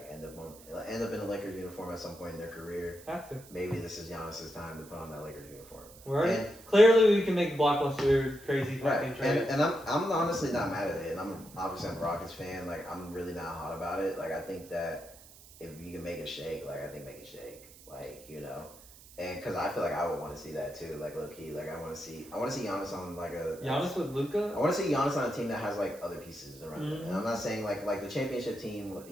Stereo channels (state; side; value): noise; right; hiss, 20 dB below the sound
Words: end up in a Lakers uniform at some point in their career. Have to. Maybe this is Giannis's time to put on that Lakers uniform. Right. Clearly, we can make blockbuster crazy fucking trades. And I'm honestly not mad at it. And I'm a Rockets fan. Like I'm really not hot about it. Like I think that if you can make it shake, like I think make it shake. Like And because I feel like I would want to see that too, like low key. Like I want to see Giannis on like Giannis with Luka. I want to see Giannis on a team that has like other pieces around him. And I'm not saying like the championship team,